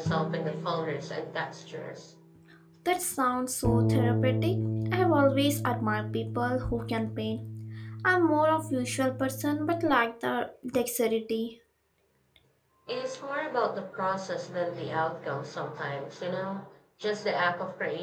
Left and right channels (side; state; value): both; identical; correlation 1.00